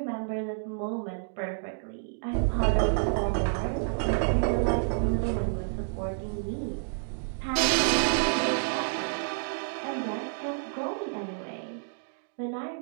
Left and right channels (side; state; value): left; silent; digital silence